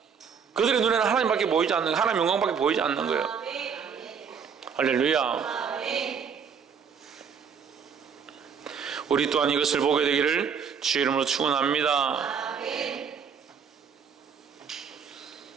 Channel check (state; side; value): quieter; left; 6.7 dB